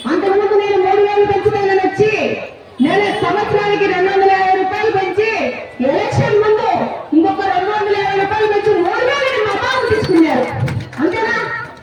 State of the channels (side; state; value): both; identical; correlation 1.00